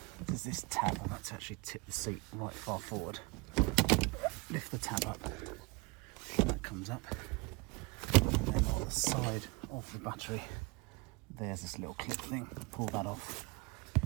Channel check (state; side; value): quieter; left; 26.5 dB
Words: There's this tab. I've had to actually tip the seat right far forward. Lift the tab up, and that comes up. And then on the side of the battery, there's this little clip thing. Pull that off,